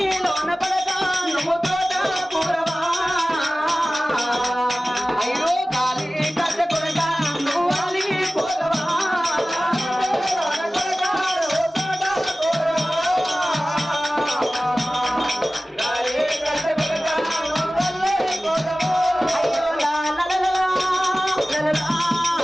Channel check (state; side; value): normal; both; correlation 0.97